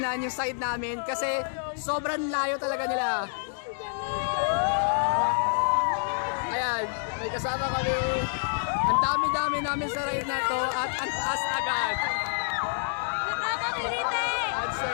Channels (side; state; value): right; silent; digital silence